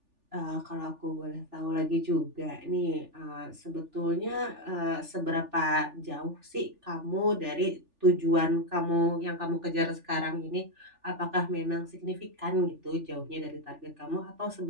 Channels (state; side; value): late; left; 3.4 ms